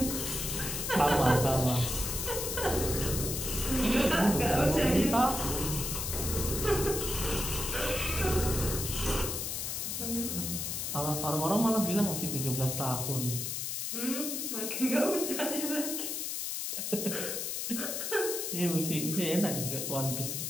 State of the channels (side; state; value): left; noise; hiss, 3 dB below the sound